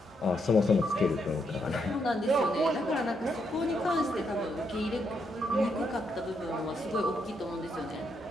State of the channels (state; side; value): normal; both; correlation 0.78